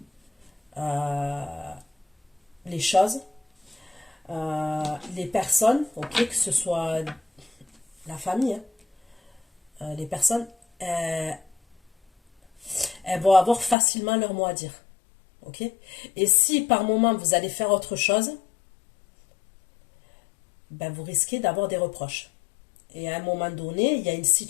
les choses, les personnes, ok, que ce soit la famille, hein, les personnes, elles vont avoir facilement leur mot à dire. Ok ? Et si par moment vous allez faire autre chose, ben vous risquez d'avoir des reproches. Et à un moment donné, il y a une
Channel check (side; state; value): right; drops out; at 13.8 s